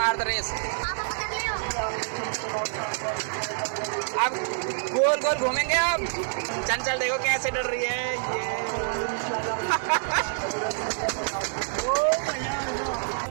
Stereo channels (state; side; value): silent; left; 60 dB below the other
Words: दो रेस। अब गोल गोल घूमेंगे। अब चंचल देखो कैसे डर रही है ये।